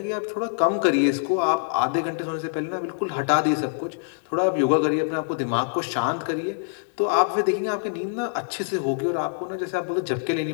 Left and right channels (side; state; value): right; silent; 62 dB below the other